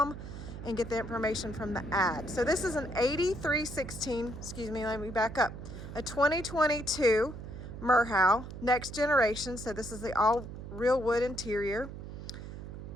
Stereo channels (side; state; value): right; noise; hum, 10 dB below the sound